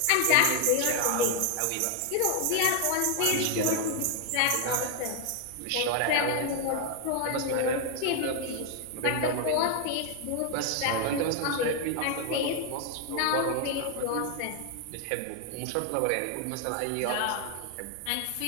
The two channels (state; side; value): different; both; correlation 0.00